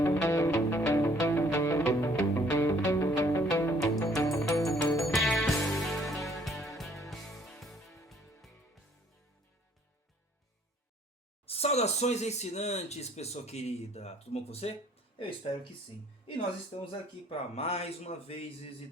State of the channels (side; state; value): both; normal; correlation 0.61